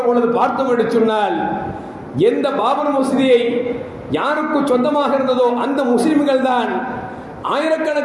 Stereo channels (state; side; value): identical; both; correlation 1.00